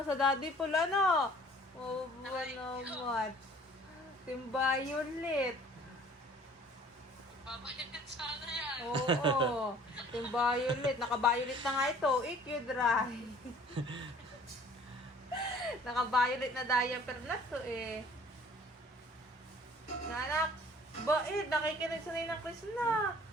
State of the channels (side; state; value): both; normal; correlation 0.52